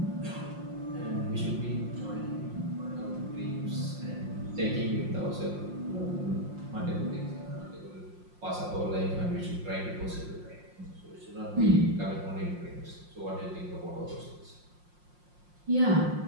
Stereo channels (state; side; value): late; left; 5.6 ms